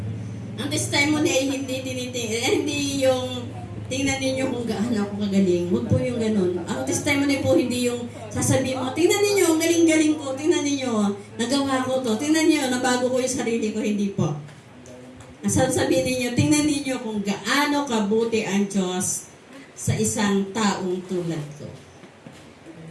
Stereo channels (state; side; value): identical; both; correlation 1.00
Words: ang testimony ay hindi yung tingnan ninyo kung gaano ako kagaling. Huwag po yung ganun. Ang testimony po hindi yung sasabihin mo, tingnan ninyo, ang galing-galing ko, tingnan ninyo, nagawa ko to, tingnan ninyo, nabago ko yung sarili ko, hindi po. Ang sasabihin ninyo, tingnan ninyo kung gaano kabuti ang Diyos sa isang taong tulad ko.